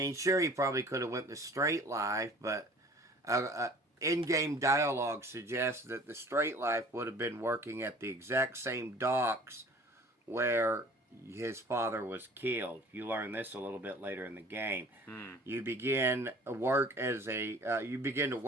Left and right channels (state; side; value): normal; both; correlation 0.48